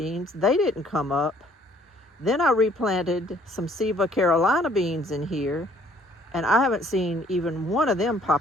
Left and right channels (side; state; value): both; normal; correlation 0.60